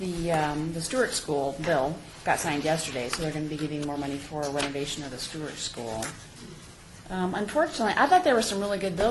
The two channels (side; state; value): both; identical; correlation 1.00